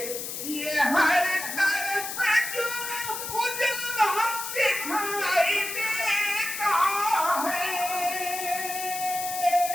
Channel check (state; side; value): noise; left; hiss, 6 dB below the sound